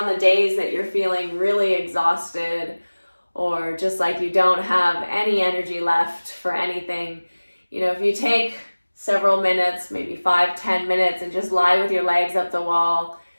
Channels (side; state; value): both; inverted; correlation -1.00